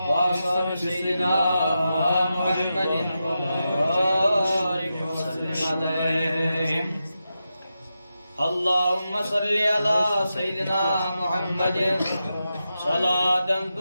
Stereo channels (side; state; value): both; inverted; correlation -0.89